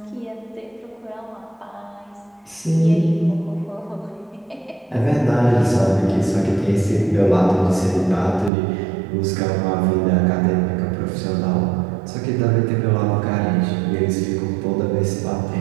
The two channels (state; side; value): drops out; left; at 8.5 s